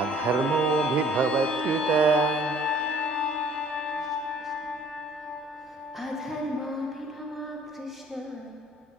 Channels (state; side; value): normal; both; correlation 0.55